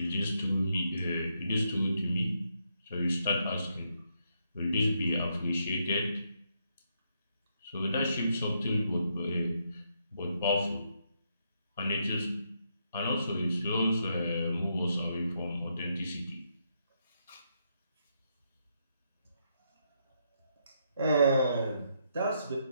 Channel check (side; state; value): both; inverted; correlation -0.78